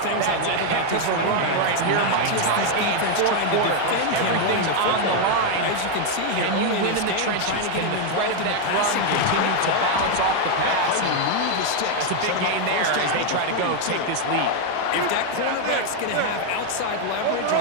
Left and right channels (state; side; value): different; both; correlation 0.01